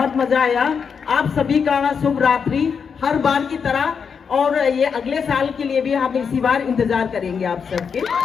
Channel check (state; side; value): quieter; right; 6.3 dB